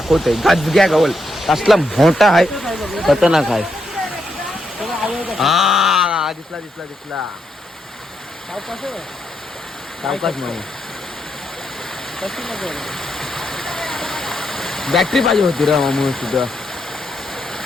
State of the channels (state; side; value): normal; both; correlation 0.80